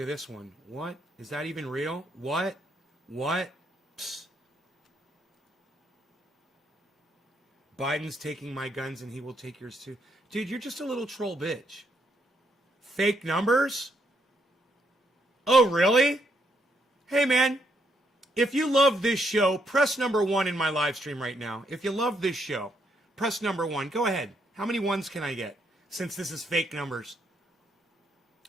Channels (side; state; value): both; normal; correlation 0.75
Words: at this one. What? Is that even real? What? What? Psst. Biden's taking my guns and he will take yours too. Dude, you're just a little troll bitch. Fake numbers? Oh, really? Hey, man. If you love this show, press number 1 in my live stream right now. If you love this show, press number 1. Go ahead. How many ones can I get? Since this is fake numbers.